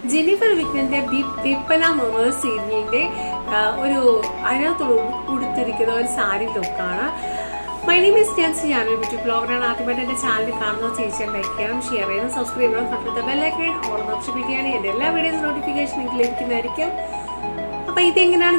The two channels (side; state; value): both; inverted; correlation -1.00